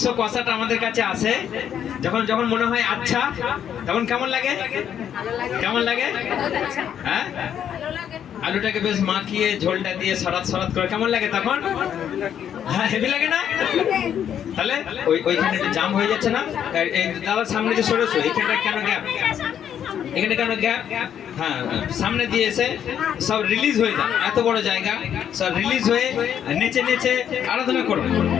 কষাটা আমাদের কাছে আসে যখন যখন মনে হয় আচ্ছা তখন কেমন লাগে কেমন লাগে হ্যাঁ আলুটাকে বেশ মাখিয়ে ঝোলটা দিয়ে সরাত সরাত করে কেমন লাগে তখন হ্যাঁ হেভি লাগে না তাহলে ওইখানে একটু জাম হয়ে যাচ্ছে না এই দাদার সামনে যে সরেছো এইখানটা কেন গ্যাপ এখানে কেন গ্যাপ হ্যাঁ সামনে দিয়ে এসে সব রিলিজ হয়ে যায় এত বড় জায়গা সব রিলিজ হয়ে নেচে নেচে আরাধনা করো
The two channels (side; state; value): right; quieter; 9.2 dB